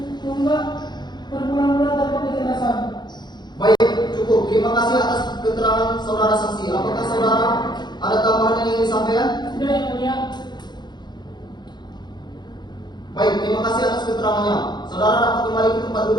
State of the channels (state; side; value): late; right; 0.21 ms